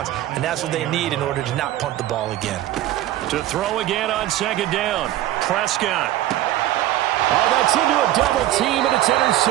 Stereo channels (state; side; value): quieter; left; 14.0 dB